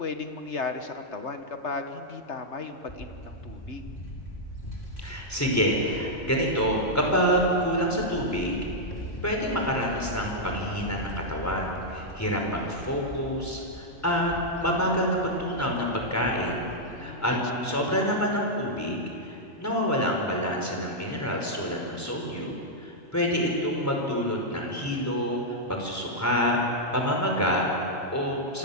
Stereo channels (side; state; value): both; normal; correlation -0.06